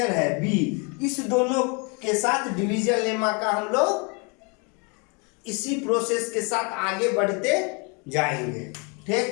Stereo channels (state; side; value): quieter; right; 33.1 dB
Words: है B, इस दोनों के साथ डिवीजन लेमा का हम लोग इसी प्रोसेस के साथ आगे बढ़ते जाएंगे,